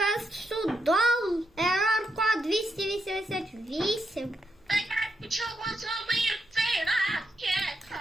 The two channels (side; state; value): both; normal; correlation 0.82